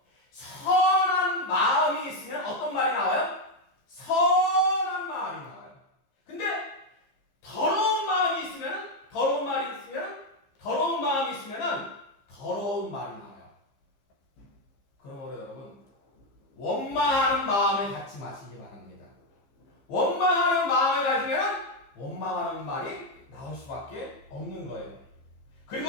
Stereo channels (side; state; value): right; late; 15 ms